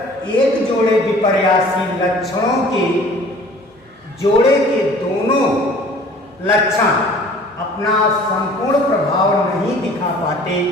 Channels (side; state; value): both; normal; correlation 0.50